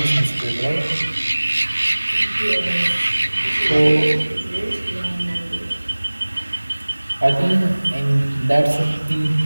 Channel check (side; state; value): both; inverted; correlation -1.00